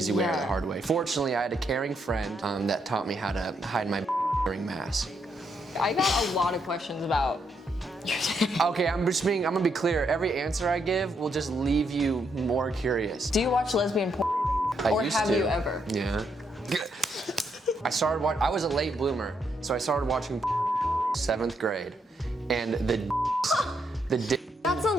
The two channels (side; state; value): both; normal; correlation 0.77